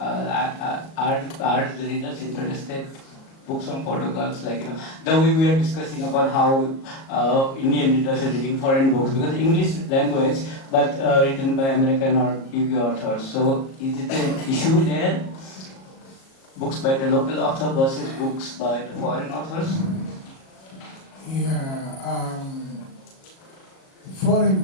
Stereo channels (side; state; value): right; late; 37 ms